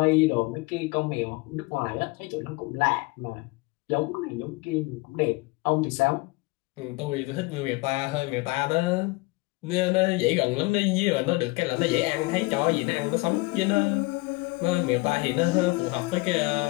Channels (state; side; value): quieter; right; 24.4 dB